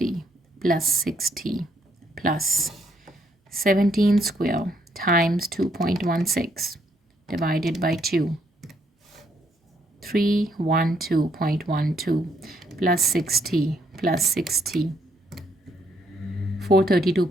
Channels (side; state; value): both; normal; correlation 0.72